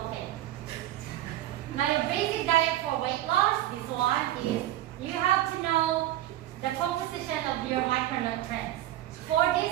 Now the basic diet for weight loss, this one is you have to know the composition of your micronutrients. For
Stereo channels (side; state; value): left; quieter; 14.0 dB